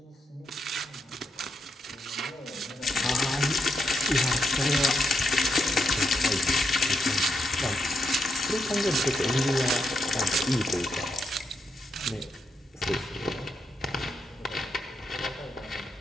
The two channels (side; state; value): both; normal; correlation 0.81